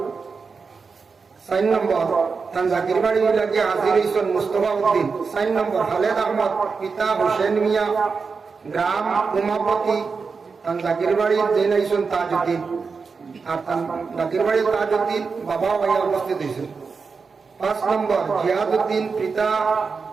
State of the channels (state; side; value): quieter; left; 5.0 dB